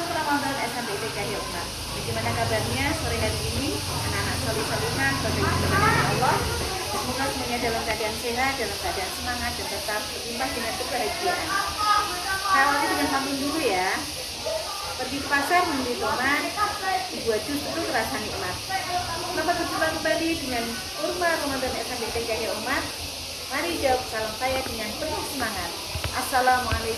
Ramadan SMP IT Cahaya Umar. Bagaimana kabarnya sore hari ini, anak-anak solih-solihan, bagaimana Allah? Semoga semuanya dalam keadaan sehat, dalam keadaan semangat, dan tetap berlimpah dengan kebahagiaan. Saya awali dengan pamit dulu ya. Pergi ke pasar membeli tomat, dibuat jus itu terasa nikmat. Selamat berjumpa kembali dengan kurma Ramadan SMP IT Cahaya Umar. Mari jawab salam saya dengan penuh semangat.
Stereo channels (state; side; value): identical; both; correlation 1.00